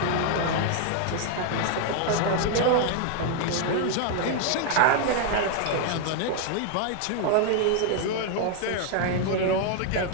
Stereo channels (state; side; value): different; both; correlation 0.00